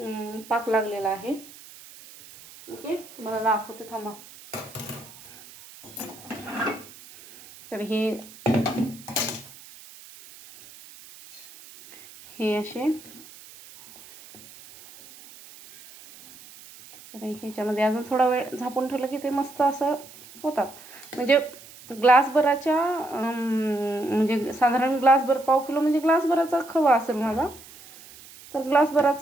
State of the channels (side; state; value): right; noise; hiss, 20 dB below the sound